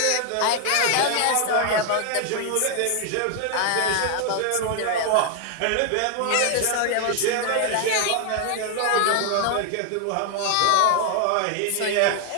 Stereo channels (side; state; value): both; different; correlation 0.00